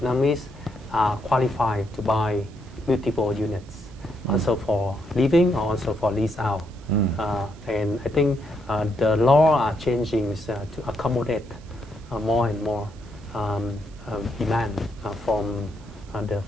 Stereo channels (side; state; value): right; noise; hiss, 27 dB below the sound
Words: are qualified to buy multiple units, also for living or also for lease out. And I think the law are changing to accommodate more and more demand from the